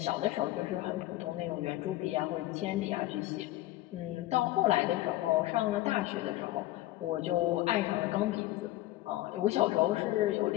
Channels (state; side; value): quieter; right; 16.6 dB